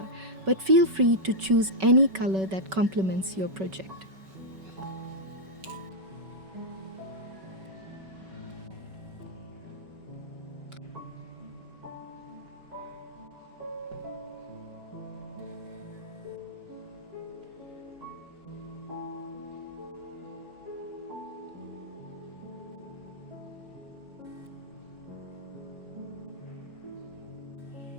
but feel free to choose any color that complements your project.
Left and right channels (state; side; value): late; left; 5.3 ms